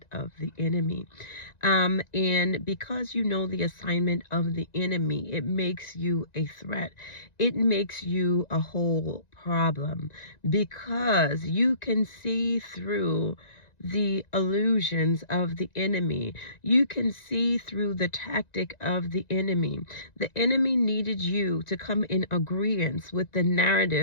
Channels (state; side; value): late; right; 1.9 ms